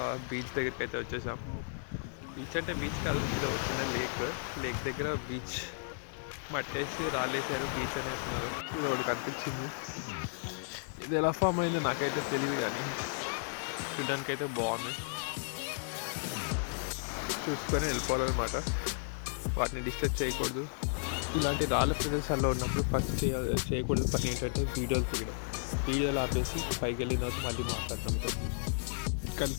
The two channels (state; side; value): silent; right; digital silence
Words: బీచ్ దగ్గరికి అయితే వచ్చేసాం. బీచ్ అంటే బీచ్ కాదు, ఇది ఒక చిన్న లేక్ దగ్గర బీచ్ మట్టేసి రాళ్ళేసారు, బీచ్ అనేస్తున్నారు. ఇది ఒకటి కనిపించింది. ఇది ఎలా ఫామ్ అయిందో నాకైతే తెలియదు, కానీ చూడడానికి అయితే బాగుంది. చూసుకొని వెళ్ళిపోవాలన్నమాట, వాటిని డిస్టర్బ్ చేయకూడదు. ఇలాంటి రాళ్ళ ప్రదేశాల్లో ఉన్నప్పుడు ఫస్ట్ చేయకూడదు పని ఏంటంటే వీడియోలు తీయడం. వీడియోలు ఆపేసి పైకి వెళ్ళిన తర్వాత మళ్ళీ మాట్లాడటం.